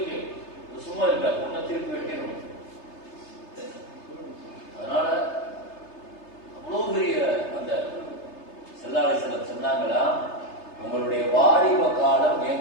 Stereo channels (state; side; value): late; right; 3.3 ms